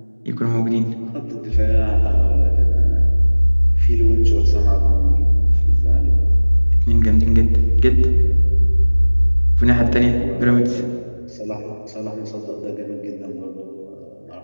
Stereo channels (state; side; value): inverted; both; correlation -1.00